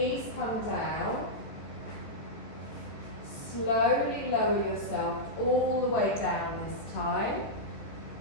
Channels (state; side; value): late; right; 14 ms